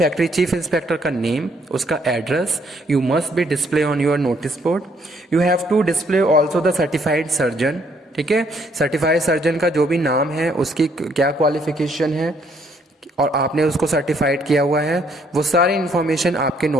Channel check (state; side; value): normal; both; correlation 0.68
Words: चीफ इंस्पेक्टर का नेम, उसका address, you must be display on your notice board. You have to display also the certified surgeon. ठीक है, certified surgeon का जो भी नाम है, उसकी क्या क्वालिफिकेशन है और आपने उसको सर्टिफाइड किया हुआ है, वो सारी इंफॉर्मेशन आपके